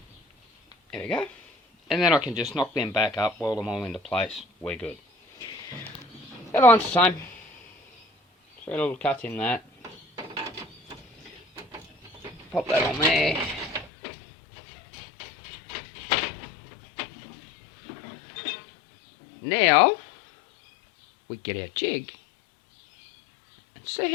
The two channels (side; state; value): right; drops out; at 13.9 s